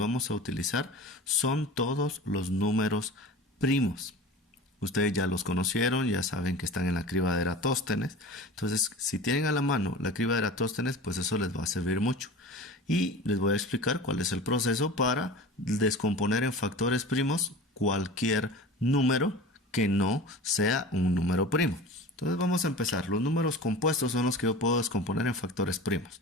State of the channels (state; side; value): normal; both; correlation 0.36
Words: a utilizar son todos los números primos. Ustedes ya los conocieron, ya saben que están en la criba de Eratóstenes. Entonces, si tienen a la mano la criba de Eratóstenes, pues eso les va a servir mucho. Y les voy a explicar cuál es el proceso para descomponer en factores primos cualquier número que no sea un número primo. Entonces vamos a empezar. Los números compuestos son los que yo puedo descomponer en factores primos.